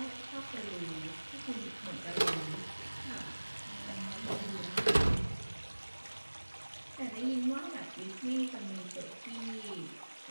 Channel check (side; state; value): both; inverted; correlation -1.00